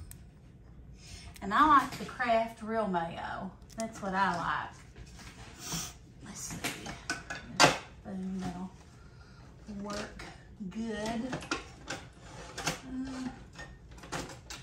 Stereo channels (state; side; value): identical; both; correlation 1.00